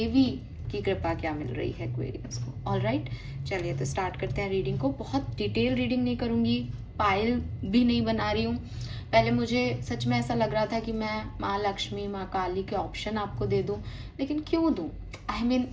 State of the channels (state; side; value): identical; both; correlation 1.00